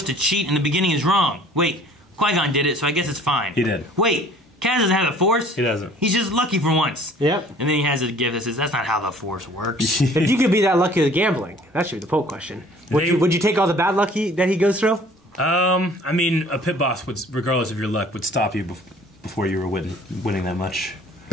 to cheat in the beginning is wrong. Wait, Qui-Gon did it, so I guess it's fine. He did. Wait, Kaz doesn't have the Force? He doesn't. He's just lucky for once. Yep. And then he has a gift that says, that's not how the Force works. If you could be that lucky with gambling, that should be the poll question. Would you take all the bad luck that he goes through? I mean, a pit boss would, regardless of your luck, would stop you before you were winning that much.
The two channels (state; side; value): normal; both; correlation 0.53